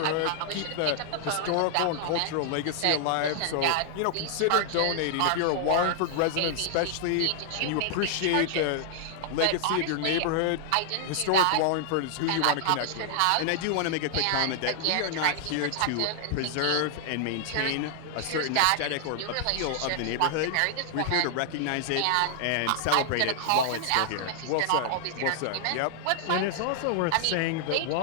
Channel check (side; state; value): both; different; correlation -0.01